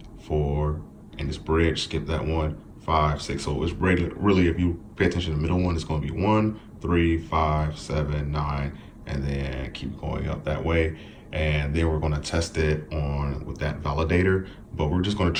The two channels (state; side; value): identical; both; correlation 1.00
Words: 4, and it's bridge, skip that one, 5, 6. So it's really, if you pay attention to the middle one, it's gonna be 1, 3, 5, 7, 9, and then keep going up that way. And then we're gonna test it on with that validator, but we're just going to